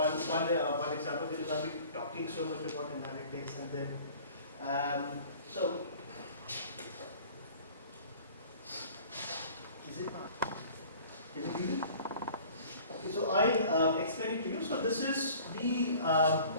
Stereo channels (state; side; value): inverted; both; correlation -0.48